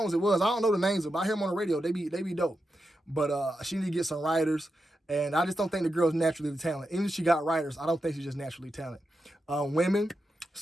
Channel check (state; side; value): normal; both; correlation 0.88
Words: it was. I don't know the names of them. I hear them on the radio. They be dope. But she need to get some writers. And I just don't think the girl's naturally talented. Even if she got writers, I don't think she's just naturally talented. Women,